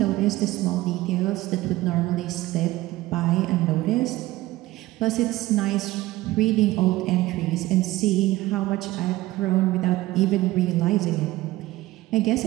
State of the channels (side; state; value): left; quieter; 17.5 dB